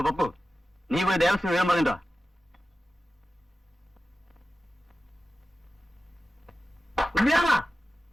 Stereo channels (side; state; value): both; normal; correlation 0.94